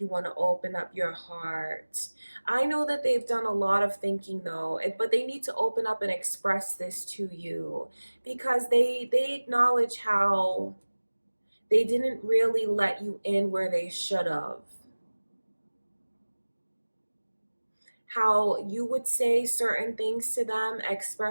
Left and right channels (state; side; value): inverted; both; correlation -1.00